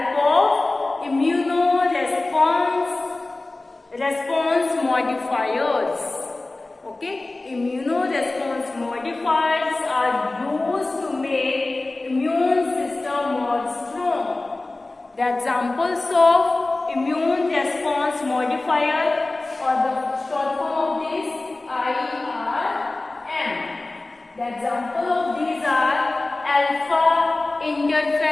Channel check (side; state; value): right; quieter; 3.0 dB